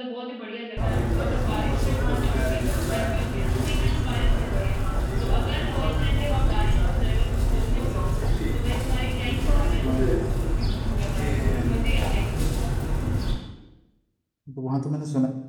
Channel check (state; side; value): identical; both; correlation 1.00